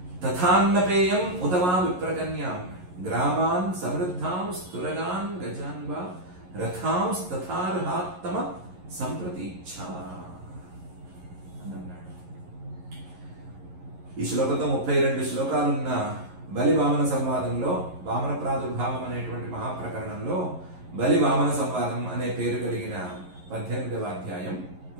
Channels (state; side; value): late; left; 11 ms